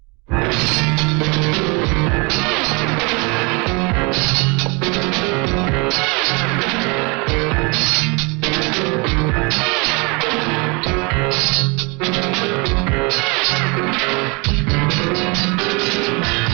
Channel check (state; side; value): quieter; left; 29.4 dB